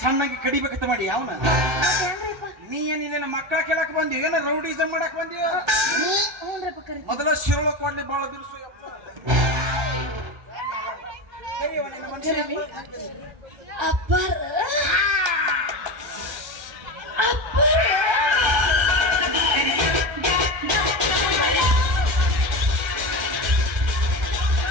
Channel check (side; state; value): left; late; 1.3 ms